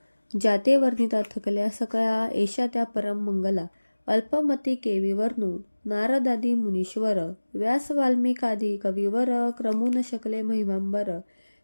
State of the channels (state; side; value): inverted; both; correlation -1.00